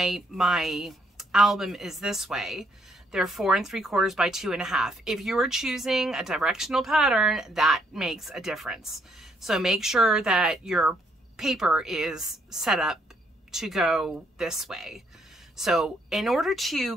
album is this way, they're 4 3/4 by 2.5. If you are choosing a directional pattern, that makes a difference. So make sure that your paper is set up to go this way. So in order to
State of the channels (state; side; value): normal; both; correlation 0.71